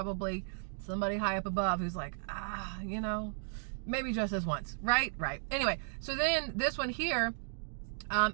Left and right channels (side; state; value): left; silent; digital silence